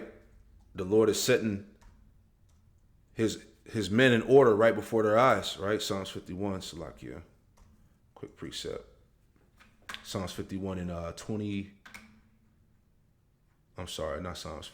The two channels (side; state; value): both; identical; correlation 1.00